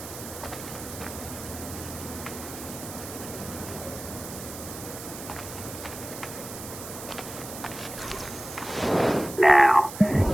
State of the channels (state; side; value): noise; right; hiss, 11 dB below the sound